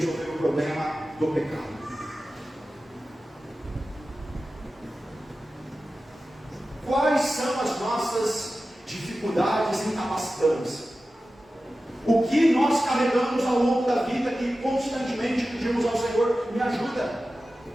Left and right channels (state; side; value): normal; both; correlation 0.94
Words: o problema do pecado. Quais são as nossas dificuldades incapacitantes? O que nós carregamos ao longo da vida que constantemente pedimos ao Senhor: me ajuda?